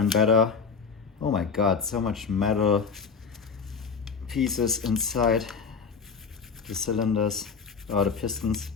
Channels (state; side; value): quieter; right; 5.6 dB